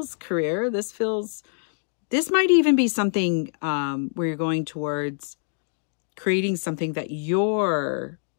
career. This might even be something where you're going towards creating something that you're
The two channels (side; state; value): right; silent; digital silence